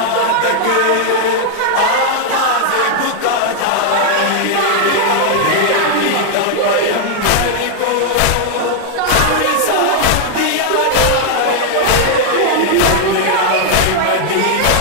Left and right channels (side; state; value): both; different; correlation 0.00